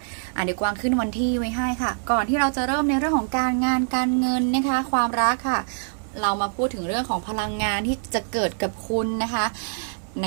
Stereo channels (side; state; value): left; silent; digital silence